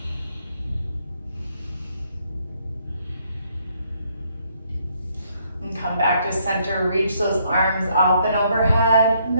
And come back to center, reach those arms up and overhead, and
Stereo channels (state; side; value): inverted; both; correlation -0.71